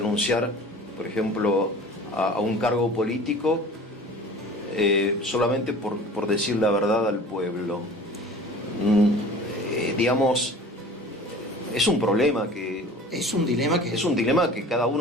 por ejemplo, a un cargo político solamente por decir la verdad al pueblo. Digamos, es un problema que... es un dilema es un dilema que cada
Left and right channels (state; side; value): normal; both; correlation 0.42